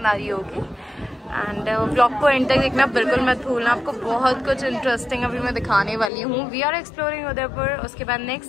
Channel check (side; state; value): right; drops out; at 6.1 s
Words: आ रही होगी। एंड व्लॉग को एंड तक देखना बिल्कुल मत भूलना। आपको बहुत कुछ इंटरेस्टिंग अभी मैं दिखाने वाली हूँ। We are exploring Udaipur. उसके बाद